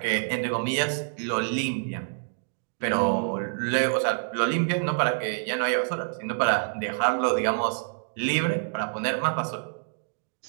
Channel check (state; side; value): silent; left; digital silence